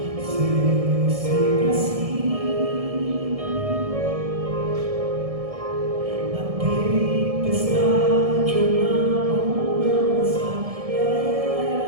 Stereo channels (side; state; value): left; late; 1.6 ms